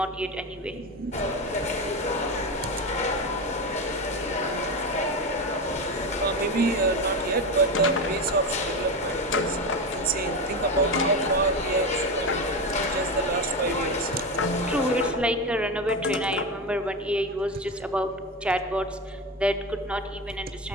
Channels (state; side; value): normal; both; correlation 0.19